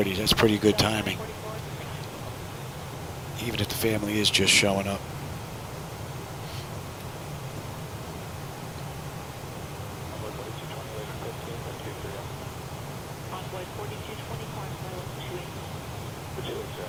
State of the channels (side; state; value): both; identical; correlation 1.00